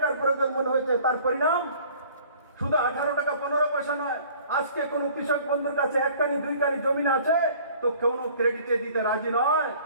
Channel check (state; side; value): inverted; both; correlation -0.51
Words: প্রকিউরমেন্ট হয়েছে। তার পরিণাম শুধু 18 টাকা 15 পয়সা নয়, আজকে কোনো কৃষক বন্ধুর কাছে 1 কানি 2 কানি জমি আছে তো কোনো ক্রেডিটে দিতে রাজি নয়।